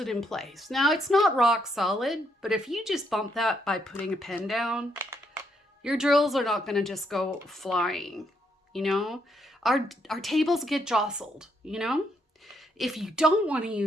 in place. Now, it's not rock solid, but if you just bump that by putting a pen down, your drills are not going to just go flying, Our tables get jostled, If you don't want to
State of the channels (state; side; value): normal; both; correlation 0.75